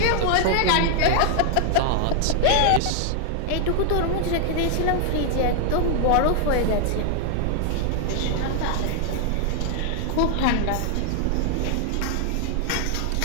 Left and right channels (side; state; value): both; different; correlation 0.00